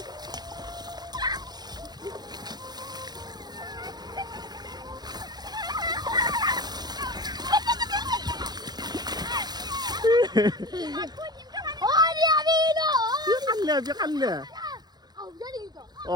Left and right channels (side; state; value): left; late; 0.20 ms